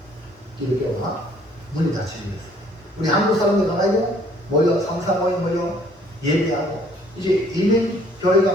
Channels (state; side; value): normal; both; correlation 0.60